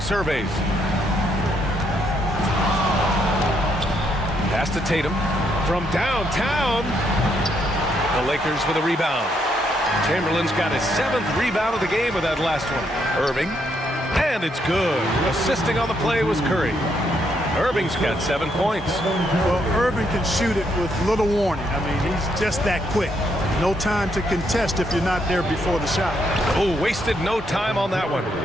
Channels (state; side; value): normal; both; correlation 0.75